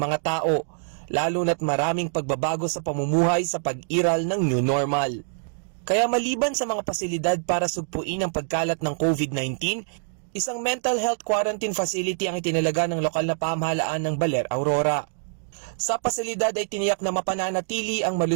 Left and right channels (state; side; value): silent; left; digital silence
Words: tao, lalo na't maraming pagbabago sa pamumuhay sa pag-iral ng new normal. Kaya maliban sa mga pasilidad para sugpuin ang pagkalat ng COVID-19, isang mental health quarantine facility ang itinalaga ng lokal na pamahalaan ng Baler, Aurora. Sa pasilidad ay tiniyak na mapananatili ang